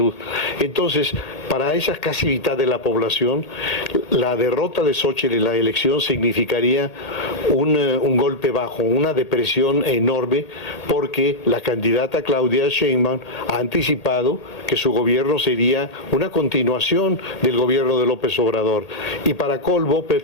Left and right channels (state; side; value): late; right; 1.8 ms